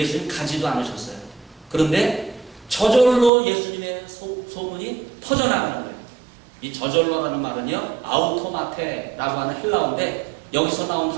가지도 않으셨어요. 그런데 저절로 예수님의 소문이 퍼져나가는 거예요. 이 저절로라는 말은요, 아우토마테라고 하는 헬라어인데 여기서 나온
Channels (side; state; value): left; drops out; at 3.3 s